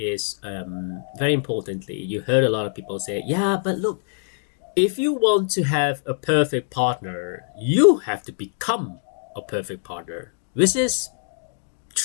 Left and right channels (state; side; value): silent; right; digital silence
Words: very importantly, you heard a lot of people say, yeah, but look, if you want to have a perfect partner, you have to become a perfect partner, which is